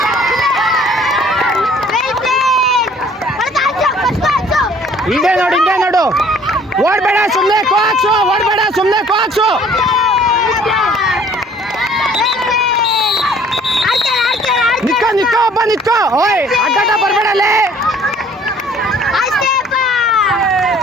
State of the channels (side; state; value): both; normal; correlation 0.55